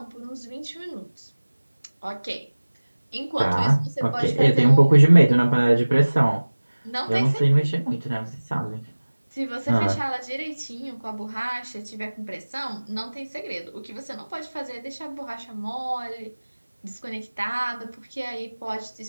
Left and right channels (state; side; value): inverted; both; correlation -1.00